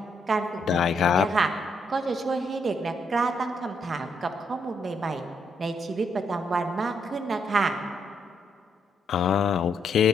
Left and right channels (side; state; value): both; normal; correlation 0.75